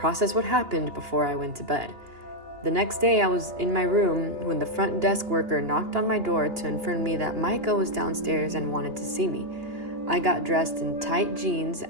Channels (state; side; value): late; left; 2.9 ms